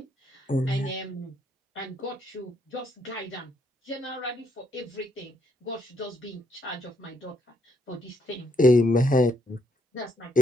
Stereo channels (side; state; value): both; normal; correlation 0.74